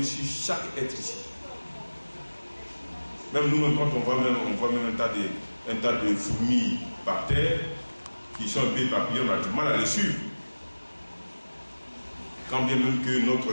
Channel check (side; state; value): both; inverted; correlation -1.00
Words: sur chaque être ici. Même nous-mêmes, quand on voit même un tas de fourmis par terre, qui sont un peu éparpillées, on a du mal à les suivre. Quand bien même que